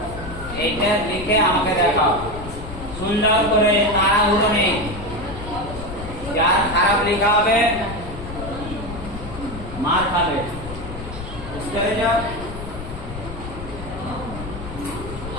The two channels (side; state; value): left; noise; rumble, 10 dB below the sound